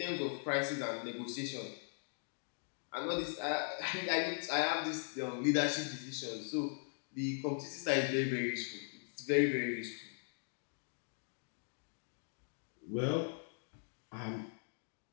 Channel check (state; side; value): silent; right; 51 dB below the other